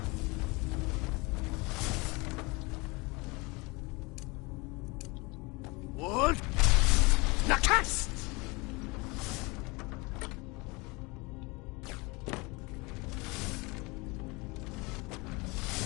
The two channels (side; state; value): right; quieter; 26.1 dB